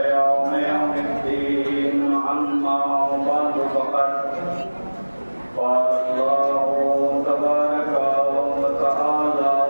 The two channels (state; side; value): inverted; both; correlation -1.00